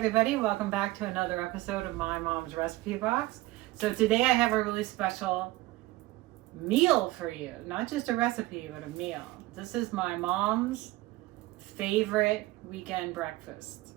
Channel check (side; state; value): left; quieter; 18.9 dB